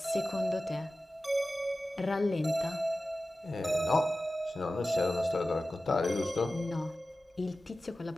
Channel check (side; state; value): both; normal; correlation 0.95